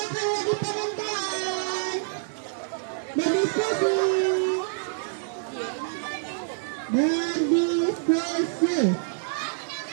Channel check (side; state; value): left; silent; 60 dB below the other